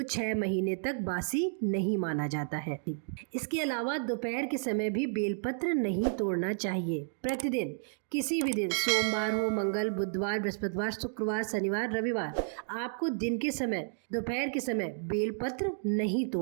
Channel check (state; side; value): silent; left; digital silence